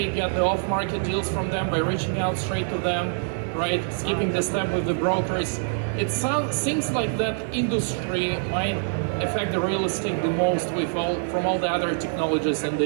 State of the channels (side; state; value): left; silent; digital silence